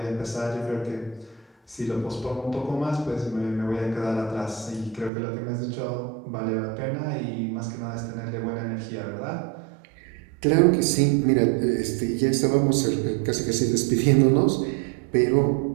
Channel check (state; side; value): drops out; left; at 5.1 s